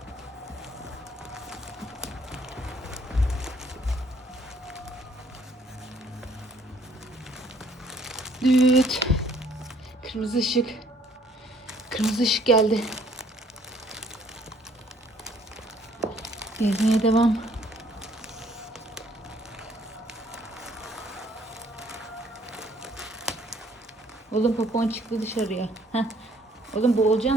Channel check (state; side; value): normal; both; correlation 0.62